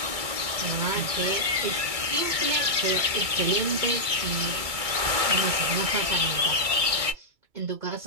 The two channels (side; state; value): left; late; 2.3 ms